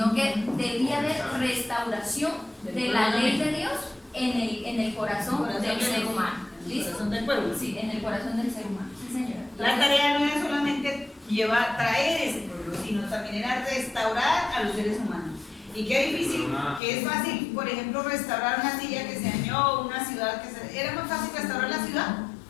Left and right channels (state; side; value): drops out; right; at 16.8 s